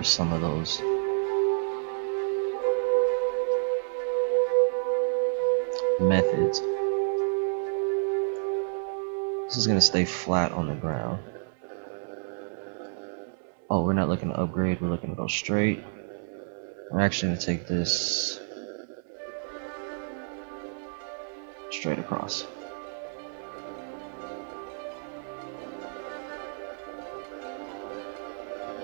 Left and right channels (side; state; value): left; silent; digital silence